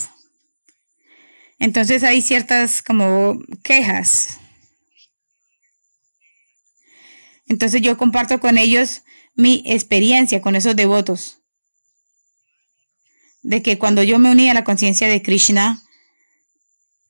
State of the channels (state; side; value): inverted; both; correlation -1.00